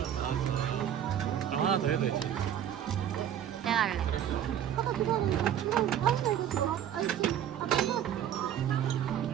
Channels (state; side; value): quieter; left; 10.1 dB